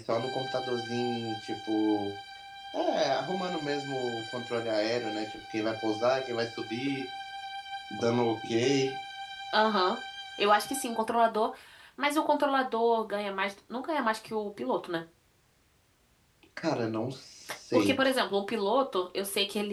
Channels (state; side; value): identical; both; correlation 1.00